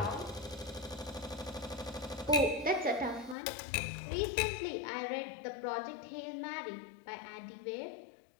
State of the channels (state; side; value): drops out; right; at 3.4 s